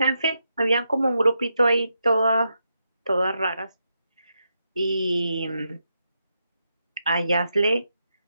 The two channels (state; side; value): inverted; both; correlation -0.84